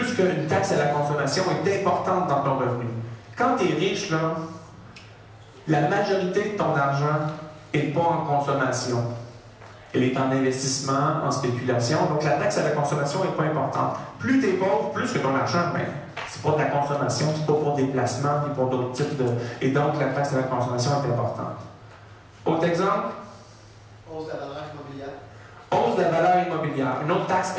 qu'une taxe à la consommation est importante dans ton revenu. Quand tu es riche, là, la majorité de ton argent n'est pas en consommation. Elle est en investissement, en spéculation. Donc la taxe à la consommation n'est pas importante. Plus tu es pauvre, plus que ton argent, ben, c'est pas de la consommation, c'est pas pour des placements, puis pour d'autres types de... Et donc la taxe à la consommation est importante. Autre exemple? Hausse de la valeur immobilière. Hausse de la valeur immobilière. Une autre taxe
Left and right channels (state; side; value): identical; both; correlation 1.00